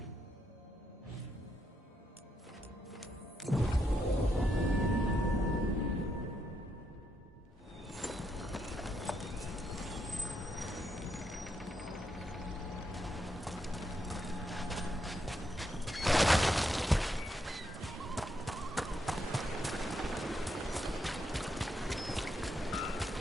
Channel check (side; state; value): both; normal; correlation 0.79